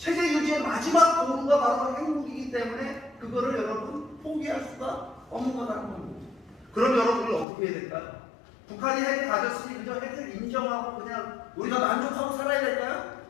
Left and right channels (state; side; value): drops out; right; at 7.5 s